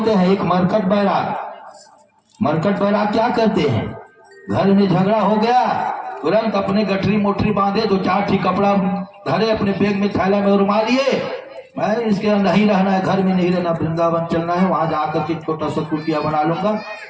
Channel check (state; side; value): identical; both; correlation 1.00